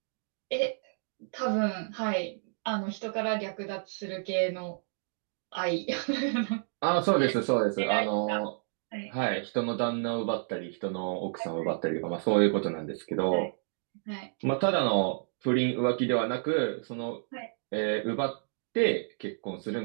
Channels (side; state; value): left; silent; digital silence